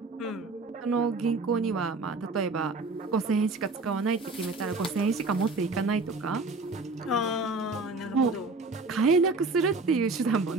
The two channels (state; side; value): quieter; left; 3.5 dB